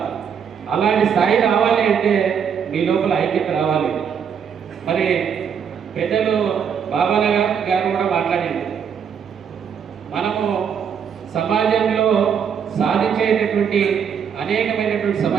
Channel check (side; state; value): left; quieter; 7.4 dB